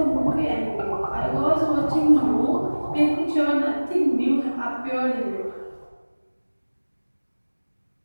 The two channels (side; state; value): both; inverted; correlation -1.00